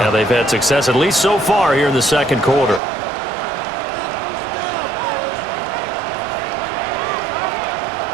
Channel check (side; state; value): left; drops out; at 2.8 s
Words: Yeah, they've had success, at least so far here in the second quarter.